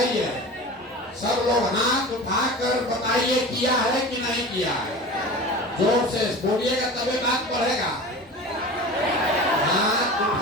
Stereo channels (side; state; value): both; normal; correlation 0.34